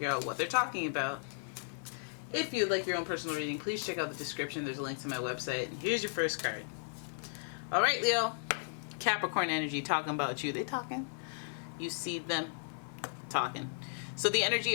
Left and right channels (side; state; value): right; silent; digital silence